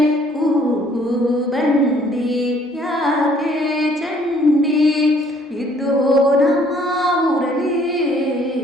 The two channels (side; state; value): both; normal; correlation 0.61